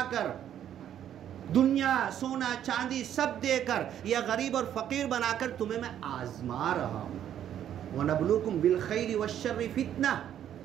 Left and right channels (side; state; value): left; quieter; 10.4 dB